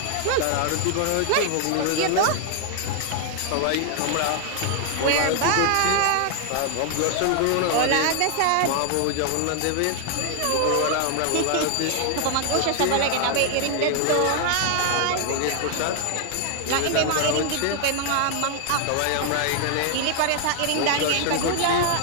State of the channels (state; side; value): different; both; correlation 0.00